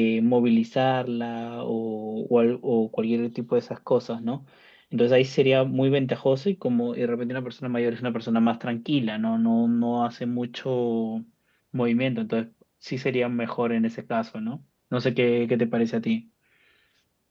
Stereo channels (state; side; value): identical; both; correlation 1.00